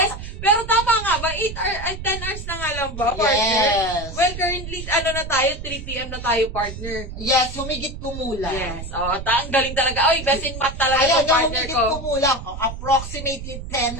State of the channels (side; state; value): right; noise; rumble, 9 dB below the sound